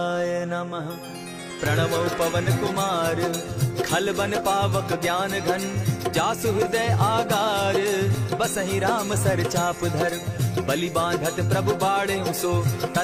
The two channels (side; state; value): both; identical; correlation 1.00